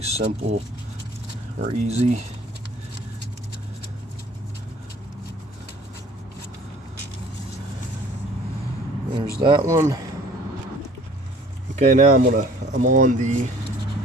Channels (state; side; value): normal; both; correlation 0.51